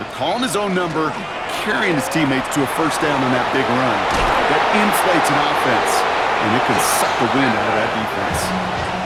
Calling his own number, carrying his teammates to a first down on that big run. That inflates an offense, and it can suck the wind out of that defense.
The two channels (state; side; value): identical; both; correlation 1.00